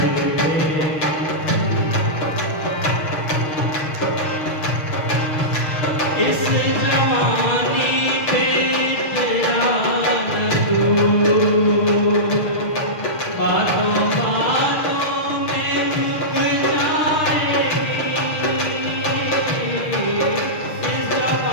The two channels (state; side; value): late; right; 6.5 ms